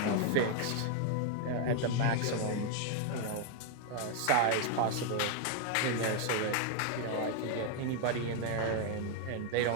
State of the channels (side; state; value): both; different; correlation 0.00